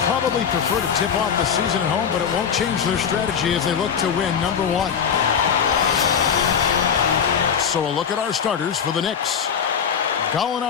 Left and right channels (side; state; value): right; quieter; 7.3 dB